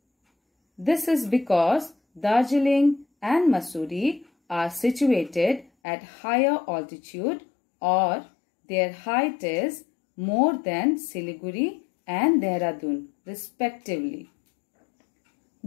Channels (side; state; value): right; drops out; at 5.7 s